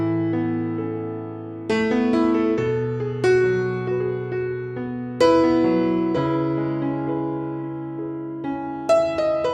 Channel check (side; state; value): both; identical; correlation 1.00